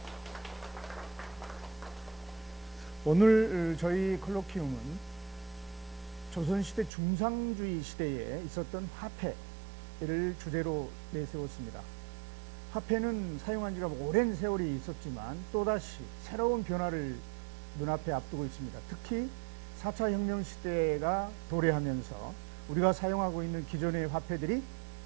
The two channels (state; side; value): drops out; left; at 6.9 s